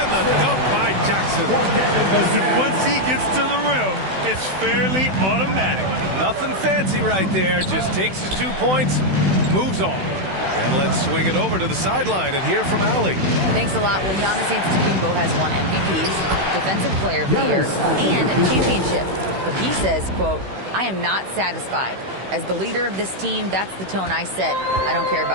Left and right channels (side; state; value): left; late; 16 ms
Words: the dunk by Jackson. Once he gets to the rim, it's fairly automatic. Nothing fancy right there. Just takes his 2 points, moves on. And let's swing it over to the sideline and hear from Allie. Thanks a lot. Well, Giannis Antetokounmpo has won MVPs, Defensive Player of the Year, and a championship. But he says, quote, I am not satisfied. As the leader of this team, that's the tone I set. I don't care